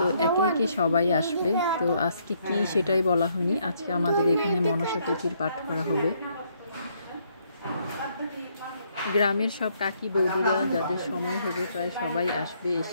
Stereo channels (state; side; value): inverted; both; correlation -0.70